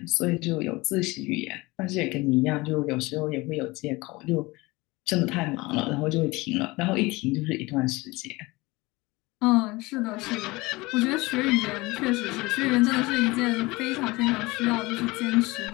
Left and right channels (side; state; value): right; quieter; 22.4 dB